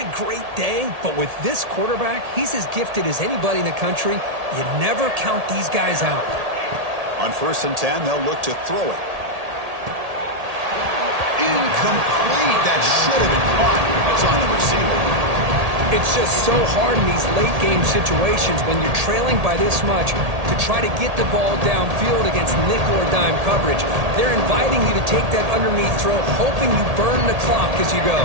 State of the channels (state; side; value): late; left; 1.8 ms